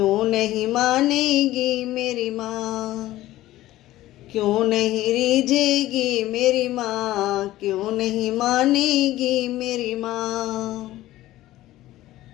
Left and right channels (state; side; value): quieter; right; 15.7 dB